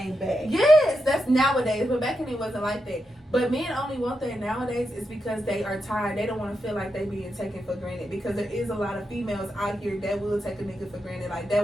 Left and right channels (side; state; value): both; normal; correlation 0.86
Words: back. Yes, that's nowadays. But back then it wasn't like that. But men only want that nowadays is because they are tired. They don't want to feel like they being taken for granted. Because there is a lot of females out here that will take a nigga for granted. Like